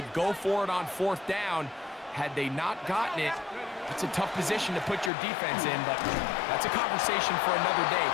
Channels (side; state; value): right; drops out; at 5.1 s